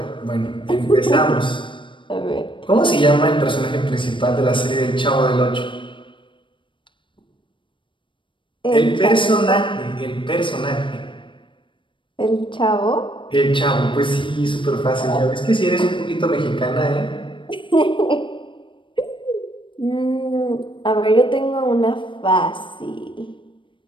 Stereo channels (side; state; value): right; late; 0.24 ms